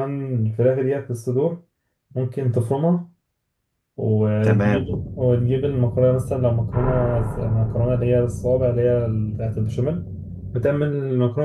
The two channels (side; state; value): both; identical; correlation 1.00